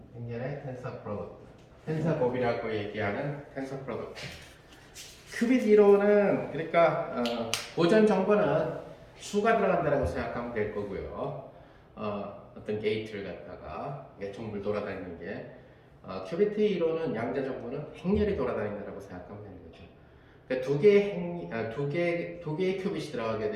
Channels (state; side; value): identical; both; correlation 1.00